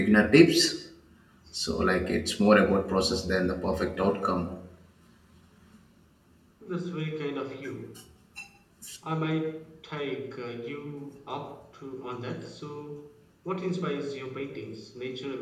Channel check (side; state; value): both; identical; correlation 1.00